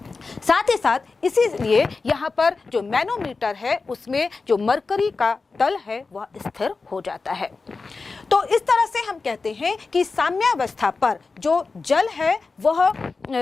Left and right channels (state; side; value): quieter; right; 4.2 dB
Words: साथ ही साथ इसीलिए यहाँ पर जो मैनोमीटर है उसमें जो मरकरी का तल है वह स्थिर हो जाता है। तो इस तरह से हम कहते हैं कि साम्यावस्था पर जो जल है वह